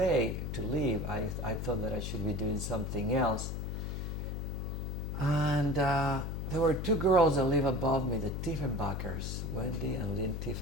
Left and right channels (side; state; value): left; noise; hum, 3 dB below the sound